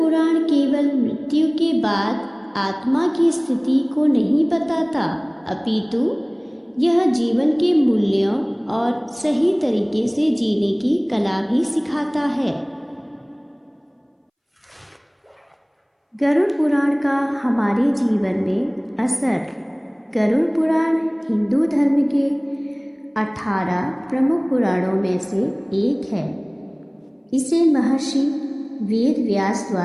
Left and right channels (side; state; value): both; identical; correlation 1.00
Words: केवल मृत्यु के बाद आत्मा की स्थिति को नहीं बताता, अपितु यह जीवन के मूल्यों और सही तरीके से जीने की कला भी सिखाता है। गरुड़ पुराण का हमारे जीवन में असर। गरुड़ पुराण हिंदू धर्म के 18 प्रमुख पुराणों में से एक है। इसे महर्षि वेद व्यास